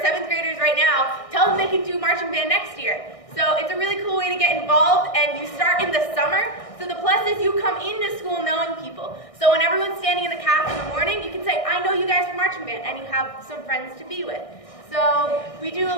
graders right now, tell them they can do marching band next year. So it's a really cool way to get involved, and you start in the summer, so the plus is you come into school knowing people. So when everyone's standing in the calf in the morning, you can say, I know you guys from marching band, and you have some friends to be with. So we do a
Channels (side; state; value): right; late; 1.6 ms